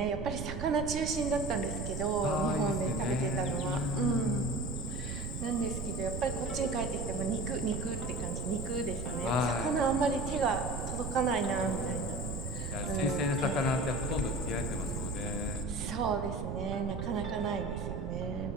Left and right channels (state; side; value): noise; right; rumble, 5 dB below the sound